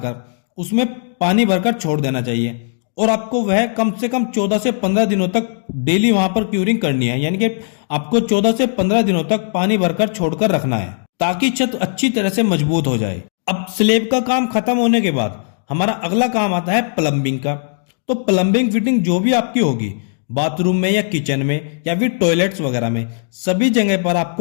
उसमें पानी भरकर छोड़ देना चाहिए, और आपको वह कम से कम 14 से 15 दिनों तक डेली वहां पर क्यूरिंग करनी है, यानी कि आपको 14 से 15 दिनों तक पानी भरकर छोड़कर रखना है, ताकि छत अच्छी तरह से मजबूत हो जाए। अब स्लैब का काम खत्म होने के बाद हमारा अगला काम आता है प्लम्बिंग का। तो प्लम्बिंग फिटिंग जो भी आपकी होगी, बाथरूम में या किचन में या फिर टॉयलेट्स वगैरह में, सभी जगह पर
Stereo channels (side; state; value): right; silent; digital silence